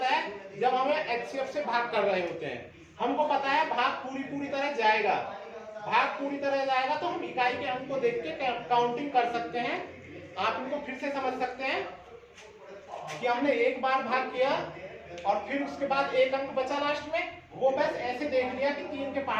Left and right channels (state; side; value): identical; both; correlation 1.00